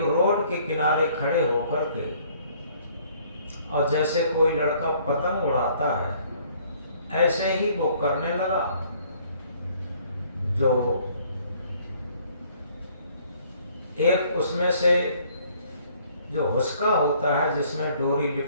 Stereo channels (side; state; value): both; inverted; correlation -0.60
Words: रोड के किनारे खड़े होकर के, और जैसे कोई लड़का पतंग उड़ाता है, ऐसे ही वो करने लगा। जो एक उसमें से जो हुस्का होता है, जिसमें डोरी